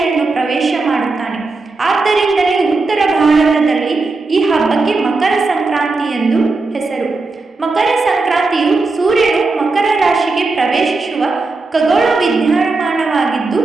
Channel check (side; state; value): left; quieter; 3.7 dB